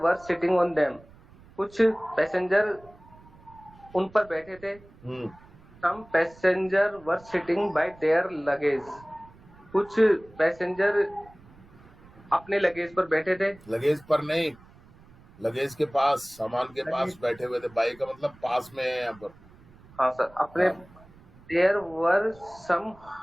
were sitting on them. कुछ पैसेंजर उन पर बैठे थे. some passenger were sitting by their luggage. कुछ पैसेंजर अपने लगेज पर बैठे थे. लगेज पर नहीं, लगेज के पास, सामान के पास लगेज- बैठे हुए थे. बाई का मतलब पास में है यहाँ पर. हाँ सर, अपने हाँ. There were some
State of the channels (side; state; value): right; noise; rumble, 24 dB below the sound